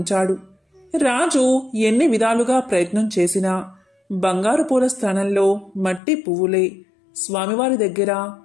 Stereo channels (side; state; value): right; drops out; at 6.0 s